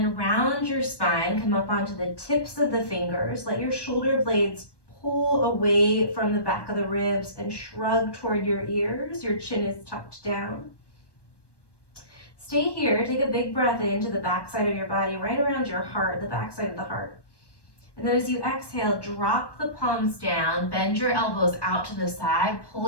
round your spine, come up onto the tips of the fingers. Let your shoulder blades pull away from the back of the ribs and shrug toward your ears. Your chin is tucked down. Stay here, take a big breath into the back side of your body, right around your heart, the back side of the heart. And then as you exhale, drop the palms down, bend your elbows out to the side,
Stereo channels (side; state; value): right; late; 1.1 ms